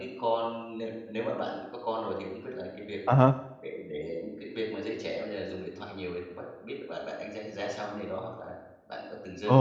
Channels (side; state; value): both; identical; correlation 1.00